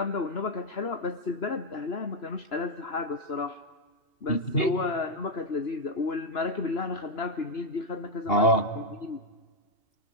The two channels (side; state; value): right; late; 2.8 ms